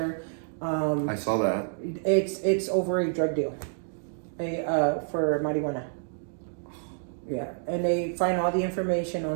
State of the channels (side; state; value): left; silent; digital silence